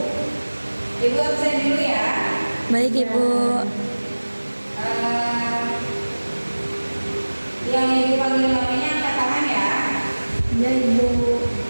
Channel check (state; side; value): inverted; both; correlation -1.00